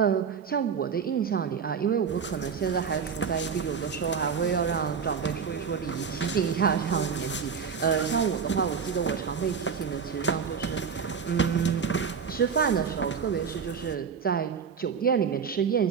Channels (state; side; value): quieter; left; 6.5 dB